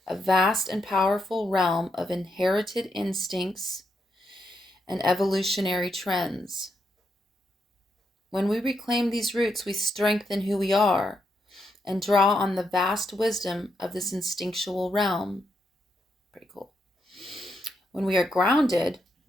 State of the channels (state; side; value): normal; both; correlation 0.81